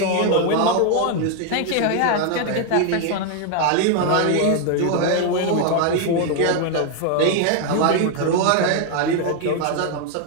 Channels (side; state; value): both; different; correlation 0.01